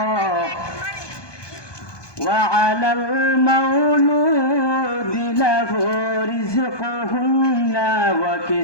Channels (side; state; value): right; late; 1.2 ms